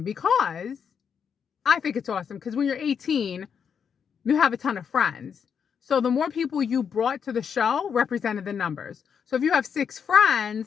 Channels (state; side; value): quieter; right; 7.1 dB